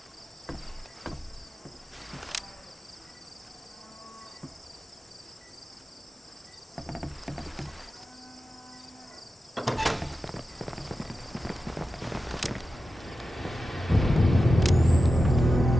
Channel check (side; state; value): both; normal; correlation 0.92